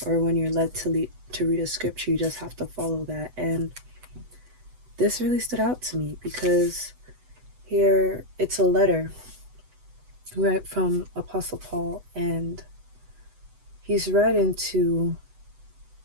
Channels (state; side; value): late; left; 8.0 ms